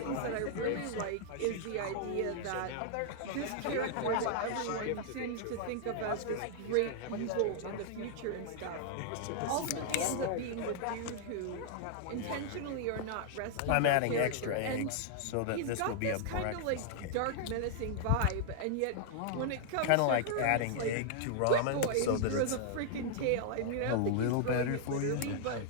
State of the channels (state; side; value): different; both; correlation -0.01